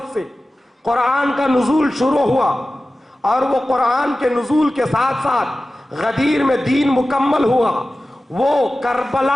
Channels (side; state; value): both; normal; correlation 0.95